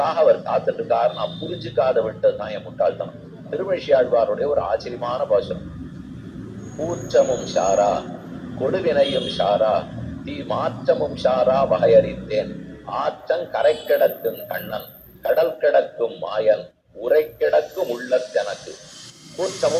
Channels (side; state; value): both; identical; correlation 1.00